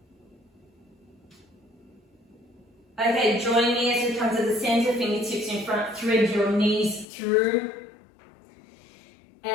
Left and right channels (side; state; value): right; drops out; at 7.1 s